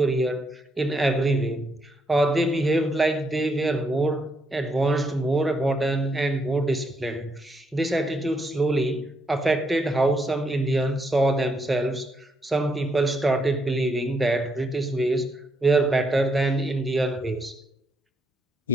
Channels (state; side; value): normal; both; correlation 0.77